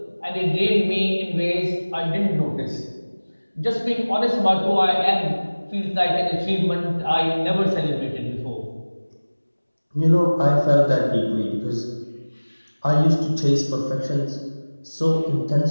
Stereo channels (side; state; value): both; inverted; correlation -1.00